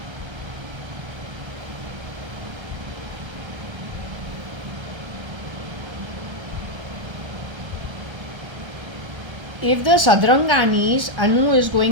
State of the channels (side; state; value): left; late; 1.3 ms